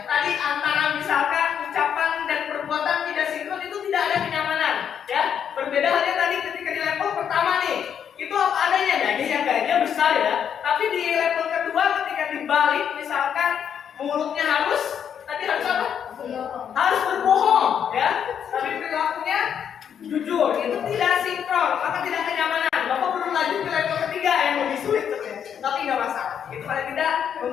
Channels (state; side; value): quieter; right; 8.3 dB